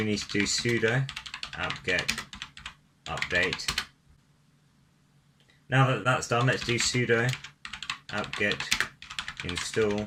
need to do sudo apt-get update. Now that that's done, let's do sudo apt-get install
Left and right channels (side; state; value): both; identical; correlation 1.00